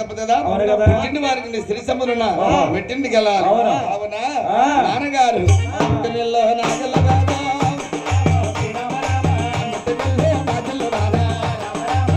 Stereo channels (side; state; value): both; identical; correlation 1.00